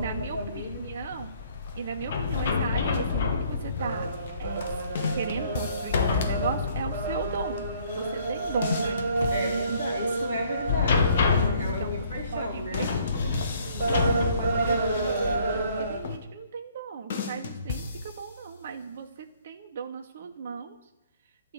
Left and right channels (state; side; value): inverted; both; correlation -0.61